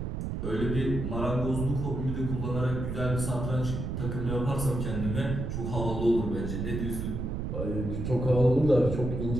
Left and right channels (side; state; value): right; noise; rumble, 3 dB below the sound